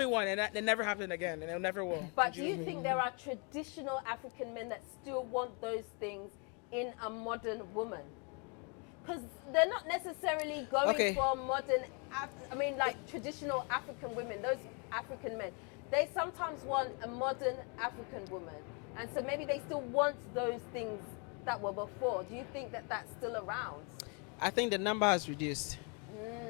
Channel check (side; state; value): right; quieter; 35.1 dB